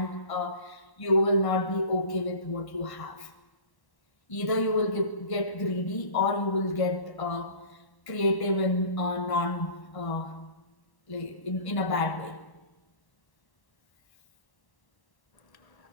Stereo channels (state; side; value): late; right; 1.1 ms